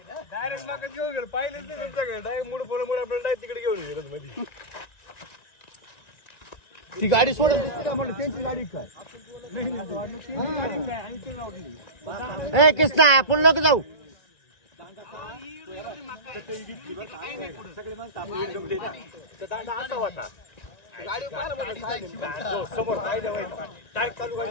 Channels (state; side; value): late; right; 1.9 ms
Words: डायरेक्ट माका घेऊन गेलो पाहिलेच नाही तुमच्याकडे डायरेक्ट मुड आपल्याला डायरेक्ट तिकडे घेऊन गेलो मध्ये ती गाडी सोडत दिसते का म्हणलं त्यांची गाडी काय ए कृष्णा आपण नको जाऊ समोर काय चालू गाडी